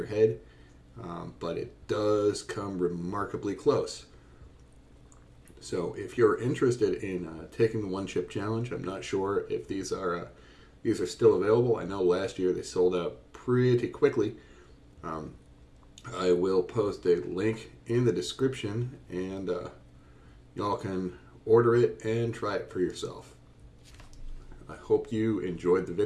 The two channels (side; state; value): both; identical; correlation 1.00